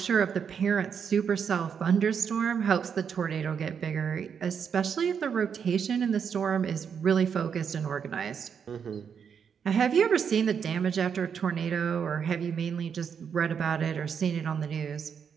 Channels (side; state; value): left; quieter; 7.1 dB